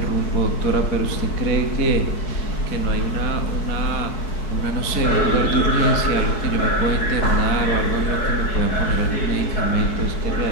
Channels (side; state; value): right; late; 4.6 ms